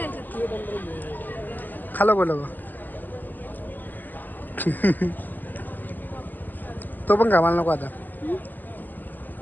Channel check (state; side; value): late; right; 0.087 ms